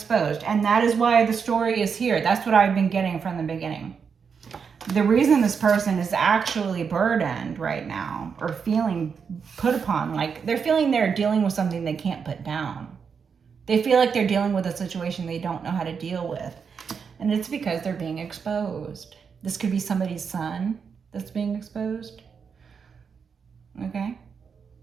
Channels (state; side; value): quieter; left; 6.2 dB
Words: and that is why the story is here. That's what I've been getting from the beginning. The reason this person is actually burdened right now, or feeling put upon, like they're feeling they're dealing with something they can't put down. They feel like they're dealing with a situation they don't know how to deal with. And it's because they're being exposed. This could be somebody's son that's being exposed. Okay?